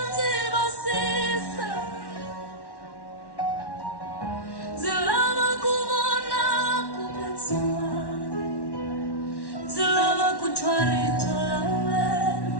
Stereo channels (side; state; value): right; late; 1.1 ms